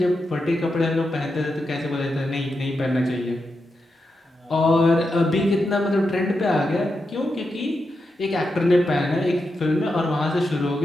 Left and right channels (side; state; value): both; normal; correlation 0.87